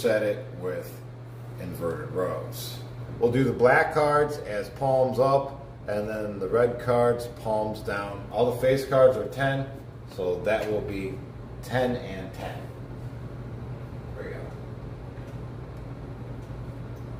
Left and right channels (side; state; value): both; identical; correlation 1.00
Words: it with inverted rows. We'll do the black cards as palms up, and then the red cards palms down. All the face cards are 10, so that will be 10 and 10. There we go.